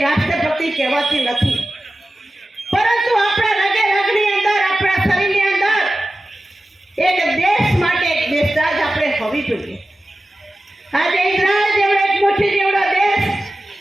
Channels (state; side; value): normal; both; correlation 0.94